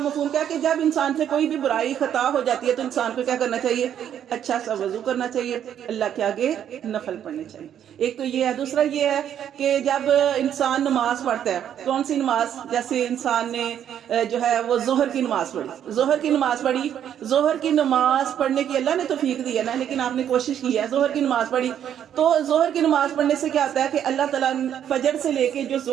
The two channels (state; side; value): quieter; left; 9.7 dB